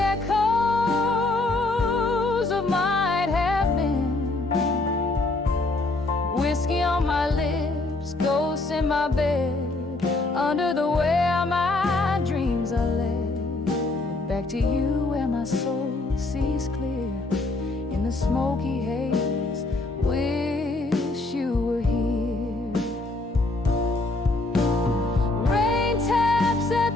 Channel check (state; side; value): quieter; right; 3.1 dB